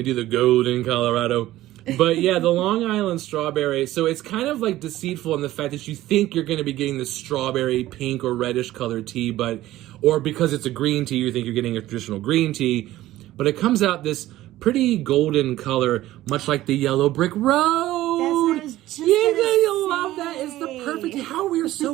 do the golden Colorado. But yeah, the Long Island strawberry, so it's kind of like deceitful in the fact that you think you're going to be getting the strawberry pink or reddish colored tea, or because it's a green tea, you think you're getting a traditional green tea, but it comes out this pretty golden color, much like the yellow brick road. That's what I was just you love that. It's the perfect. How we are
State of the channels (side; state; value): left; quieter; 15.4 dB